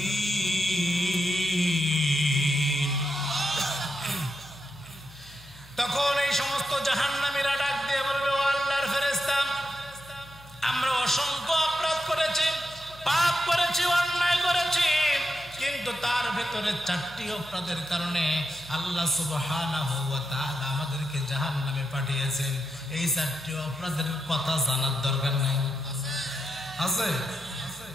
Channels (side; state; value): left; noise; hum, 22 dB below the sound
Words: তখন এই সমস্ত জাহান্নামীরা ডাক দিয়ে বলবে, ও আল্লাহর ফেরেশতা, আমরা অসংখ্য অপরাধ করেছি, পাপ করেছি, অন্যায় করেছি, কিন্তু তার ভেতরে 4টি অপরাধের কারণে আল্লাহ সুবহানাহু ওয়া তাআলা আমাদেরকে জাহান্নামে পাঠিয়েছেন। এই 4টি অপরাধের কথা জানার দরকার নাই? আছে?